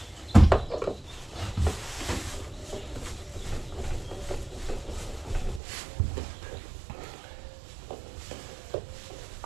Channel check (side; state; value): left; drops out; at 5.6 s